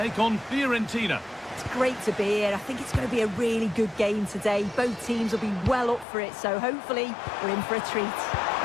on Fiorentina. It's great to be here. I think it's going to be a really good game today. Both teams will be well up for it, so hopefully we're in for a treat.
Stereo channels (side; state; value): right; drops out; at 6.1 s